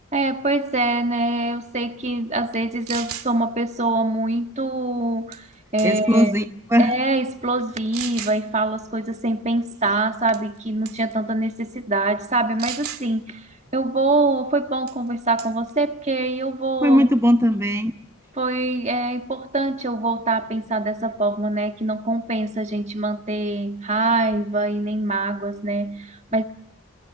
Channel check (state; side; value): normal; both; correlation 0.38